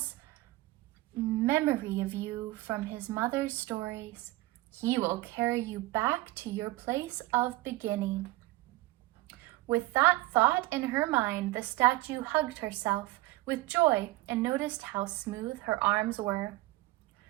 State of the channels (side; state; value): left; quieter; 18.9 dB